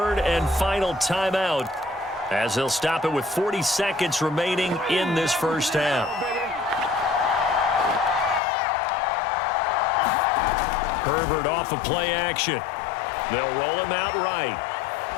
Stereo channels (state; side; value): drops out; right; at 8.4 s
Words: and final timeout as they'll stop it with 40 seconds remaining in this first half. Herbert off of play action. They'll roll him out right.